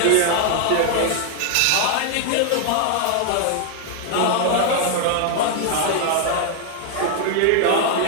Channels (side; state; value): both; different; correlation 0.00